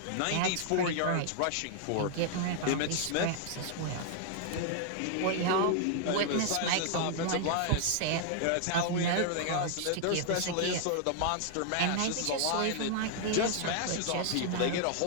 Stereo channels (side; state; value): both; different; correlation 0.00